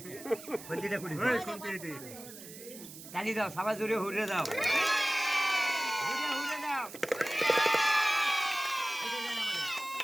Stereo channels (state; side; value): noise; right; hiss, 15 dB below the sound